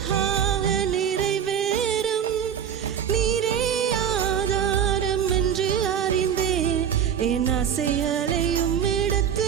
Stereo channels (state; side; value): quieter; left; 8.5 dB